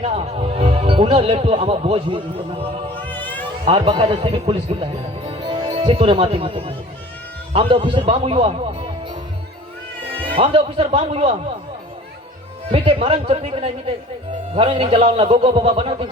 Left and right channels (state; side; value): normal; both; correlation 0.46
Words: उन्हें लेटो आमा बोझ हुई और बकायदा से भी पुलिस की है सितोरे माती माती हम दो ऑफिसर बाम हुआ मीटे मरन चक्री के नहीं मीटे घरों नहीं जलावना गोगो बाबा बना तीन